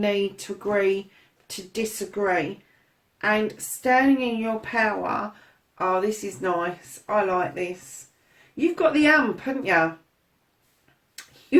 to agree to disagree. And standing in your power, oh, this is nice. I like this. You've got the ump, haven't you?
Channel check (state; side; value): identical; both; correlation 1.00